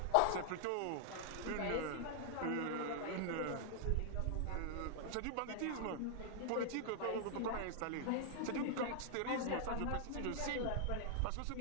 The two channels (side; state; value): both; different; correlation 0.00